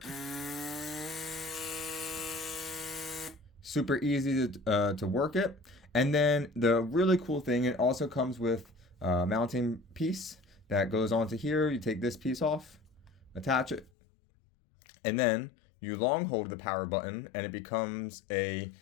Super easy to work it. And then the really cool thing, it also comes with a mounting piece that goes onto here. You take this piece off, attach it, and then you long hold the power button and it becomes a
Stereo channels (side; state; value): right; drops out; at 13.9 s